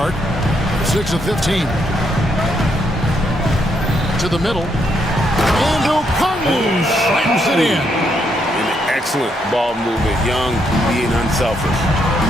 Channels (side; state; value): both; normal; correlation 0.76